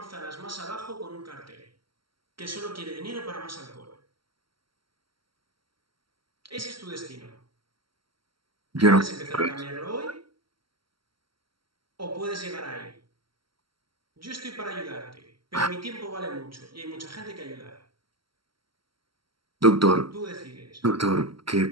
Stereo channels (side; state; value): left; late; 0.74 ms